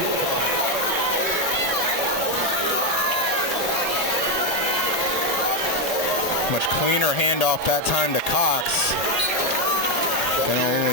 Much cleaner handoff that time to Cox. And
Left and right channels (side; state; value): both; normal; correlation 0.05